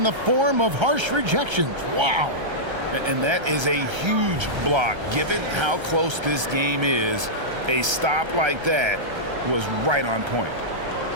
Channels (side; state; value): left; late; 1.3 ms